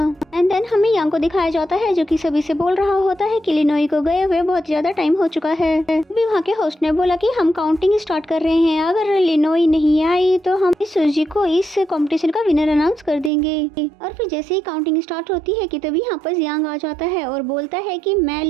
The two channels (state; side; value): drops out; left; at 13.3 s